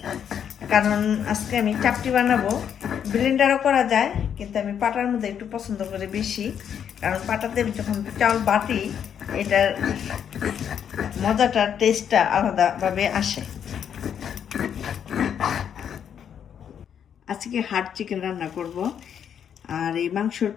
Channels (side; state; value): right; quieter; 8.5 dB